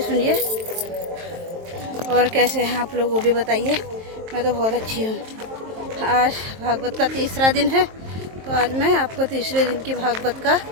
सुनिए। और कैसे हैं आप लोग वो भी बताइए। मैं तो बहुत अच्छी हूँ। आज भागवत का तीसरा दिन है, तो आज मैं आपको तीसरे दिन की भागवत का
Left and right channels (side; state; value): left; late; 23 ms